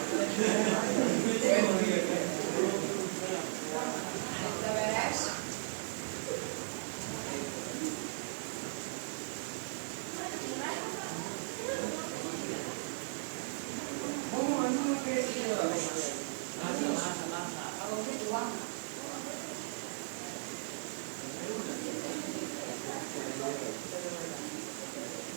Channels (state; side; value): silent; left; digital silence